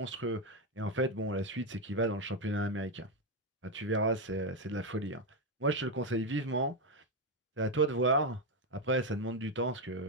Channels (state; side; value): normal; both; correlation 0.06